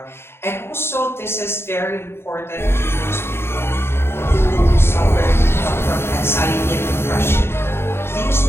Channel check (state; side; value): late; right; 0.12 ms